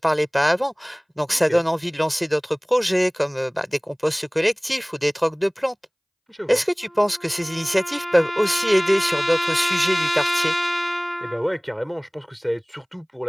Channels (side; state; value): both; identical; correlation 1.00